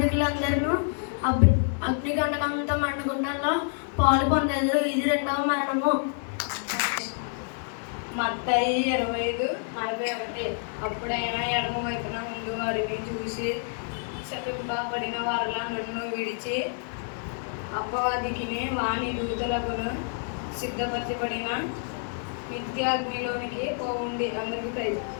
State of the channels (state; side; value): silent; right; 59 dB below the other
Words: అగ్నిగంటకంతో మండుగుండంలో పాలు పొందేది. ఇది రెండవ మరణము. మత్తయి 25:41. అప్పుడైనా ఎడమ వైపున ముందు వారిని చూసి శపింపబడిన వారిలా నన్ను విడిచి అపవాదికిని వాని దూతలకును సిద్ధపరచబడిన నిత్య అగ్నిలోనికి పోవుండి. అందరికీ ప్రైజ్.